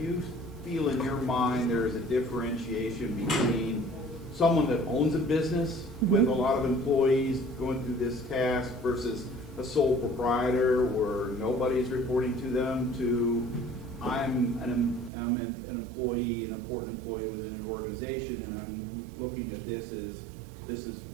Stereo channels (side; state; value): left; drops out; at 15.1 s